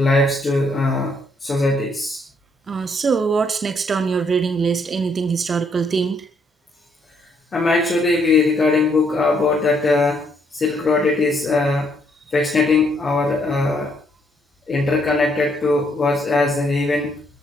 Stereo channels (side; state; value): both; normal; correlation 0.71